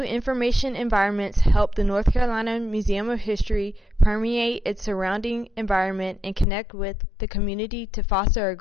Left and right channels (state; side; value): drops out; right; at 6.5 s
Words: information environments help the North Carolina Museum of History permeate its surrounding environment and connect with the community to foster a